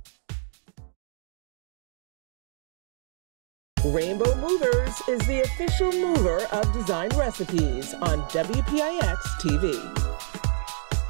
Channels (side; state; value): left; silent; digital silence